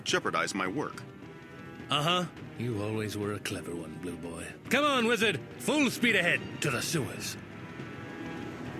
jeopardize my work. Uh-huh. You always were a clever one, Blue Boy. Come on, Wizard! Full speed ahead to the sewers.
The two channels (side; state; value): both; identical; correlation 1.00